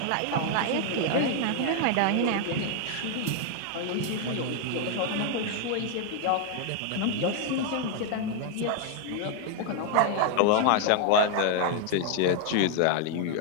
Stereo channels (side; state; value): both; different; correlation 0.00